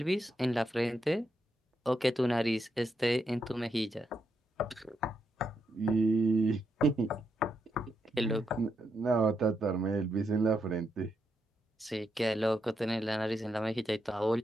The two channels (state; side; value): normal; both; correlation 0.81